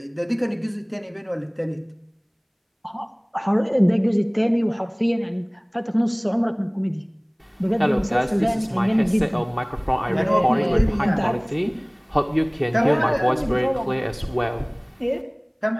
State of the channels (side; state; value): both; identical; correlation 1.00